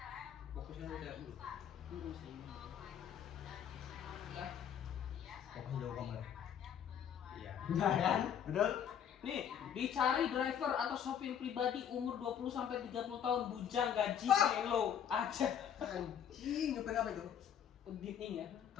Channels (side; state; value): right; quieter; 8.8 dB